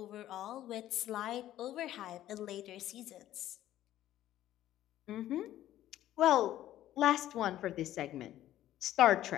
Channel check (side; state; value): right; quieter; 13.2 dB